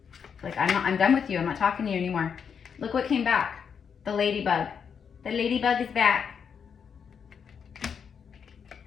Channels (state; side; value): quieter; right; 6.9 dB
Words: Like, I'm done with you. I'm not talking to you anymore. Look what came back. The ladybug. The ladybug is back.